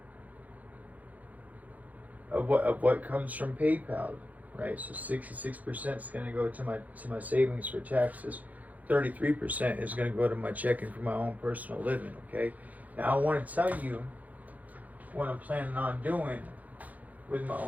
of what comes from PayPal, right? So 66% is going to go to my savings for taxes. 33% is going to go to my checking for my own personal living. Okay, now I want to tell you what I'm planning on doing with my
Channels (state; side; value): late; left; 0.078 ms